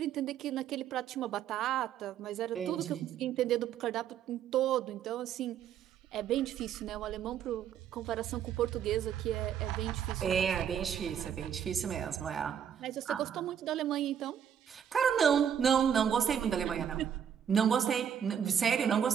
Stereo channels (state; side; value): quieter; left; 8.6 dB